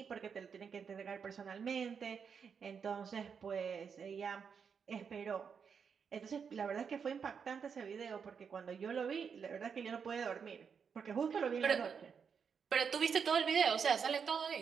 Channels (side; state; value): left; quieter; 6.5 dB